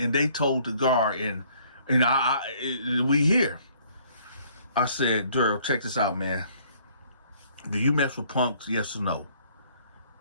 they told the guard, and we here. I said, Daryl, check this out, man. Do you mess with punks? Yes or no?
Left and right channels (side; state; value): both; inverted; correlation -0.60